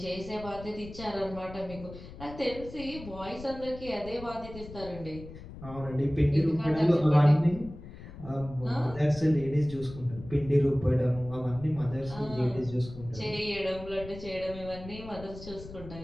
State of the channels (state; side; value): noise; left; rumble, 14 dB below the sound